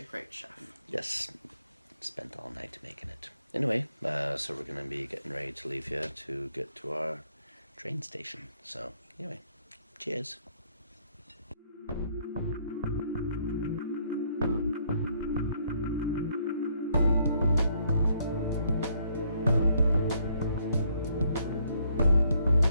great chef. Yes. Spent all night making it. Anyway, so we're going to be getting ready to leave here to get to our train station. So, anyway, cheers.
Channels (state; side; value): inverted; both; correlation -0.69